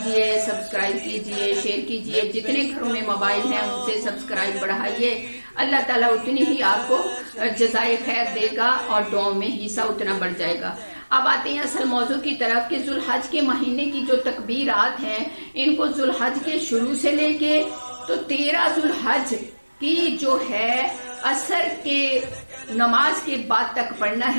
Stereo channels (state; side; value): inverted; both; correlation -1.00